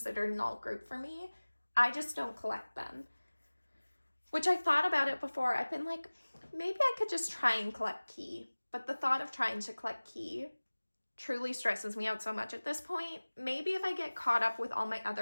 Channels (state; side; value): inverted; both; correlation -1.00